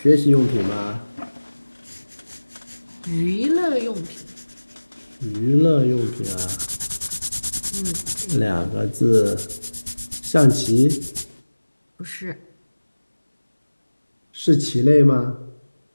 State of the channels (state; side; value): inverted; both; correlation -1.00